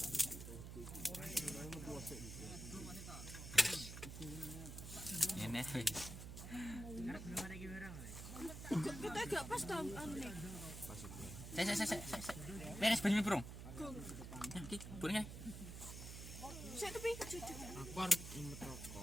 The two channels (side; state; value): right; noise; hum, 9 dB below the sound